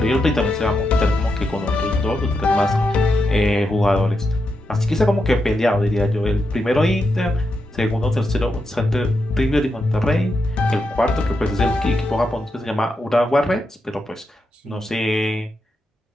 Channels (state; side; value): normal; both; correlation 0.85